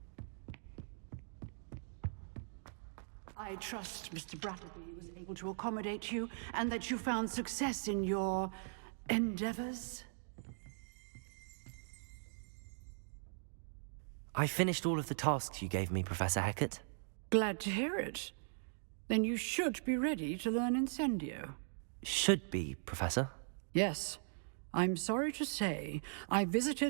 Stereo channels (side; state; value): left; silent; digital silence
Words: I trust Mr. Brattleby was able to accommodate you, and that you found success in your endeavors. I finished all of the tasks you gave me, Professor Hecat. Glad to hear it. Then you should be ready to learn Incendio. Should be, Professor. Yes. I'm sorry to say, I